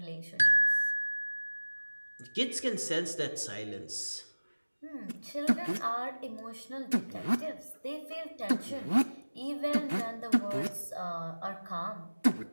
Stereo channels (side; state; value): both; inverted; correlation -1.00